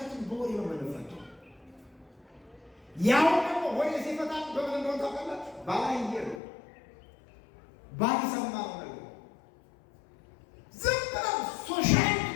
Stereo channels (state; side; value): drops out; right; at 6.4 s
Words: በወሬ ነው የምንፈታው። ያው ደግሞ ወሬ ሲፈታ በምን እንደሆነ ታውቃላችሁ? ባላየ ነው ባልሰማው ነገር ዝም ብለው ሶሻል